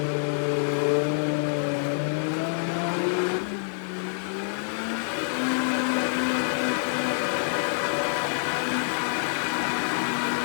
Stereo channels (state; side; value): silent; right; digital silence